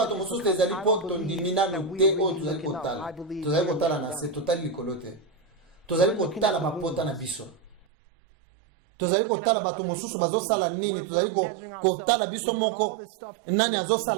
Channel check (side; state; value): left; drops out; at 7.9 s